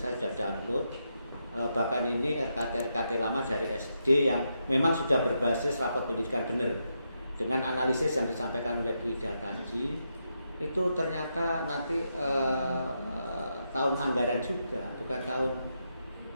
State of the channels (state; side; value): inverted; both; correlation -0.83